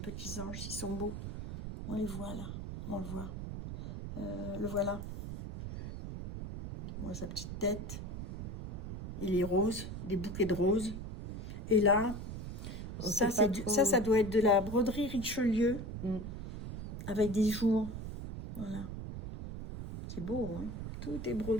anges, ils sont beaux. On les voit là. On le voit. Le voilà. Moi, sa petite tête. Il est rose, des bouquets de roses. Et là, On ça, sait pas trop. ça doit être de la broderie Richelieu Mm. avec des jours. Voilà. C'est beau, hein. Tout est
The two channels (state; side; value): noise; right; rumble, 7 dB below the sound